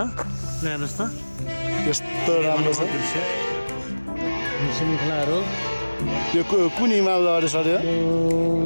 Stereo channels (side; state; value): both; inverted; correlation -1.00